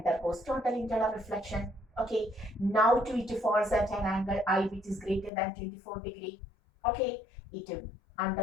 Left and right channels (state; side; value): drops out; right; at 5.3 s